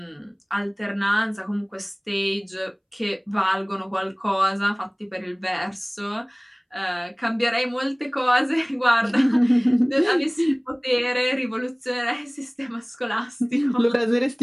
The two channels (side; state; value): both; identical; correlation 1.00